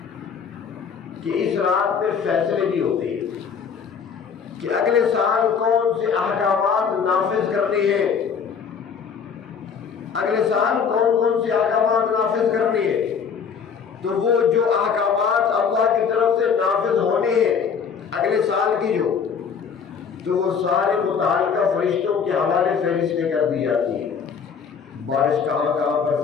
کہ اس رات میں فیصلے بھی ہوتے ہیں کہ اگلے سال کون سے احکامات نافذ کرنے ہیں، اگلے سال کون کون سے احکامات نافذ کرنے ہیں. تو وہ جو احکامات اللہ کی طرف سے نافذ ہونے ہیں اگلے سال کی تو وہ سارے متعلقہ فرشتوں کے حوالے فہرستیں کر دی جاتی ہیں. بارش کہاں کہاں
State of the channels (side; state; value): right; quieter; 6.5 dB